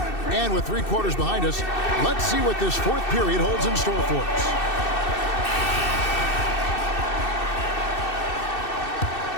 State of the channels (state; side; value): late; right; 2.6 ms